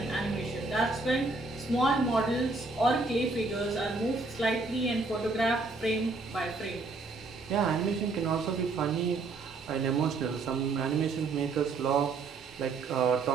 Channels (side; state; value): left; quieter; 3.7 dB